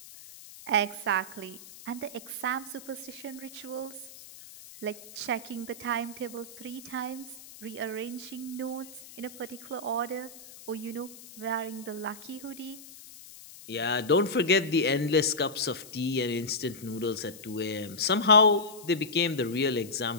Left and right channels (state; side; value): noise; left; hiss, 17 dB below the sound